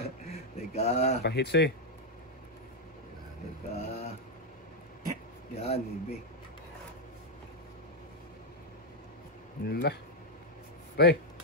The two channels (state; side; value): normal; both; correlation 0.01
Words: Teka. pahits eh. Teka. Yan, baby. Nila. Pre,